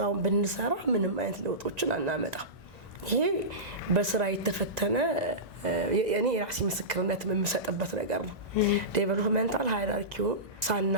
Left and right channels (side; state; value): both; normal; correlation -0.19